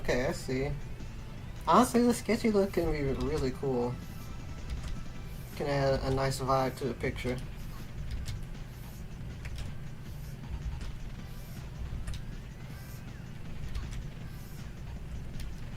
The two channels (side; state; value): both; identical; correlation 1.00